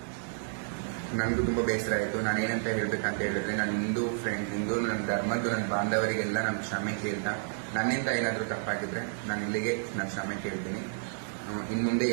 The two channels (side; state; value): left; silent; digital silence